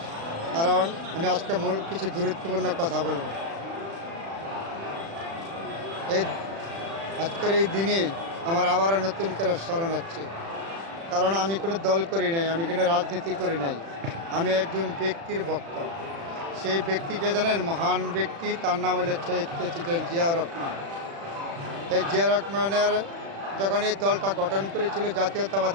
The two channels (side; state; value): left; late; 36 ms